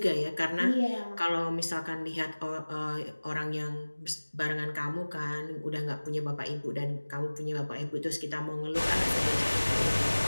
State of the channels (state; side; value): inverted; both; correlation -1.00